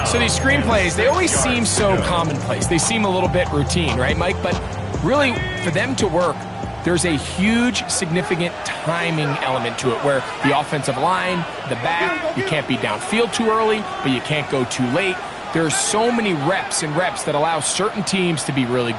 So these screenplays, they always seem so commonplace. They seem a little bit routine, right, Mike? But really, for them to work, there's a huge, significant timing element to it where the offensive line, the back, you can't be downfield too early, but you can't go too late. There's so many reps and reps that allow certain teams to be really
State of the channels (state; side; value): identical; both; correlation 1.00